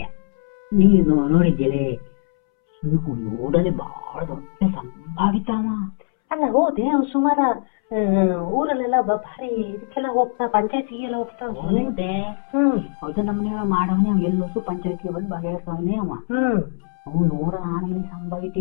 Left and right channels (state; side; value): silent; right; 64 dB below the other